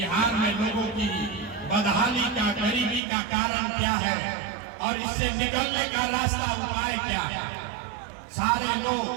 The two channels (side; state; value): left; drops out; at 3.0 s